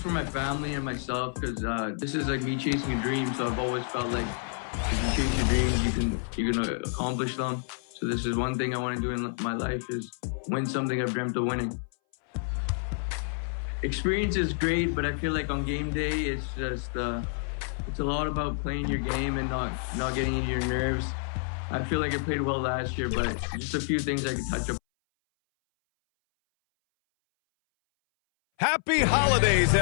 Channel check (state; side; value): silent; right; 59 dB below the other